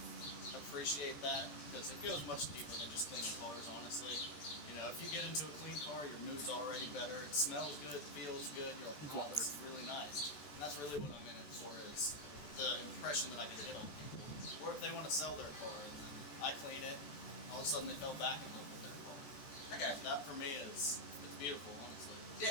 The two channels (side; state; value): right; late; 14 ms